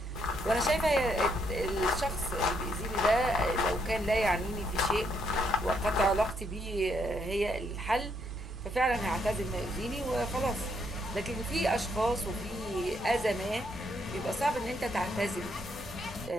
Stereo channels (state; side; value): noise; right; rumble, 16 dB below the sound